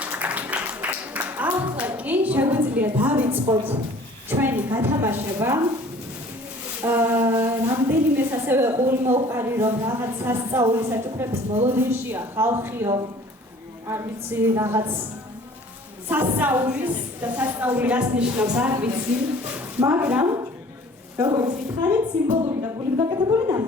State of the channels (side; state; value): both; normal; correlation 0.50